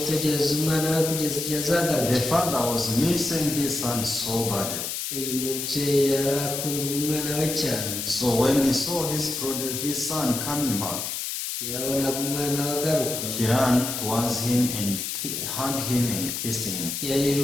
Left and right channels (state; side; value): noise; left; hiss, 4 dB below the sound